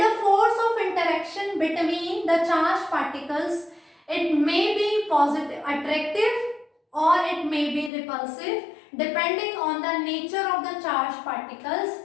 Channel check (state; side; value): drops out; right; at 7.9 s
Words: the force of interaction between the charged particles, it may be positive, attractive, or it may be repulsive depending on the nature of the charged